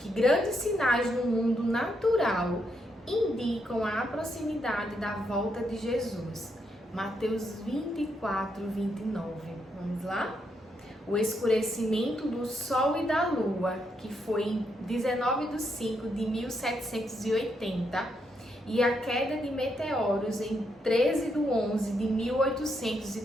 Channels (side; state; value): both; normal; correlation 0.79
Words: grandes sinais no mundo natural indicam a proximidade da volta de Jesus? Mateus 24, 29. Vamos lá? O escurecimento do Sol e da Lua, que foi em 19/5 de 1780, e a queda de meteoros em 13/11 de